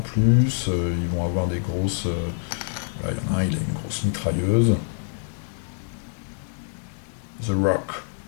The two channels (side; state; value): right; silent; 62 dB below the other